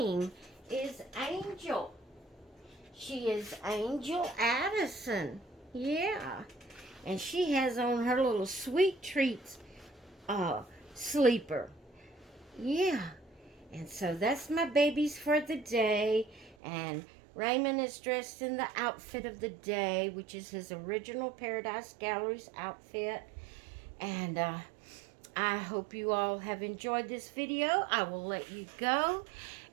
is Angel. She is Angel Addison. Yeah, and she has on her little Sweet Treats sleeper. Yeah. And so that's my babies for the day. And Raymond is dressed in the outfit of the day, which is his original Paradise Galleries outfit. And I hope you all have enjoyed this video. I will let you go,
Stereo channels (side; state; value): left; drops out; at 16.6 s